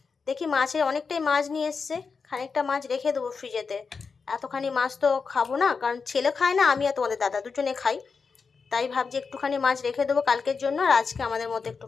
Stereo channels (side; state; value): right; quieter; 5.2 dB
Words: দেখি মাছের অনেকটাই মাছ নিয়ে এসছে, খানিকটা মাছ রেখে দেবো ফ্রিজেতে। এতখানি মাছ তো খাবো না, কারণ ছেলে খায় না, আমি আর তোমাদের দাদা দুজনে খাই। তাই ভাবছি একটুখানি মাছ রেখে দেবো কালকের জন্য, আর আজকে আমাদের মতো